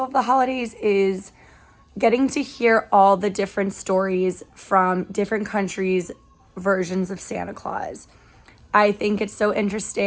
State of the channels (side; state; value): both; identical; correlation 1.00